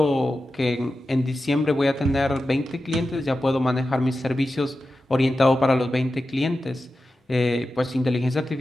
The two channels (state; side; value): normal; both; correlation 0.92